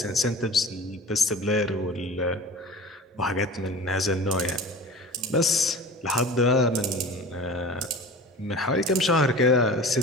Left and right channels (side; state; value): both; normal; correlation 0.37